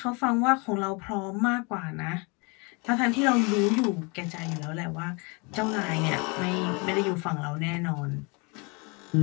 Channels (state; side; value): quieter; right; 30.5 dB